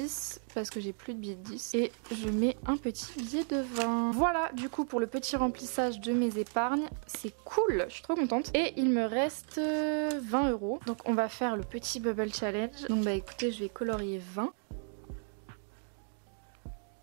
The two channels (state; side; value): silent; left; 55 dB below the other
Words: parce que j'ai plus de billet de 10 et je mets un petit billet de 20. Voilà du coup pour le petit remplissage de mes épargnes, c'est cool, je suis trop contente. Et il me reste 20 €. Donc on va faire le petit bubble challenge. Donc bah écoutez, je vais colorier 20.